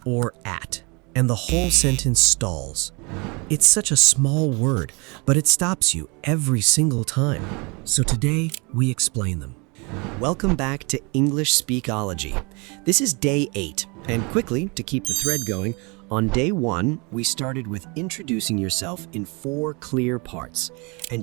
or at? And the whole sentence stalls. It's such a small word, but it stops you every single time. So today, we explain them. Welcome back to English Speakology. This is day 8, and quickly, to keep the thread going, on day 1, we started with introducing yourself in 4 clear parts.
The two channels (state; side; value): quieter; left; 29.9 dB